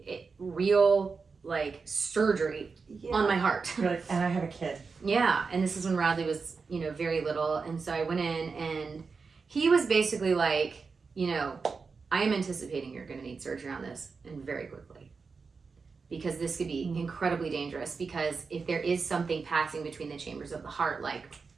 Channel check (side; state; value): left; quieter; 4.8 dB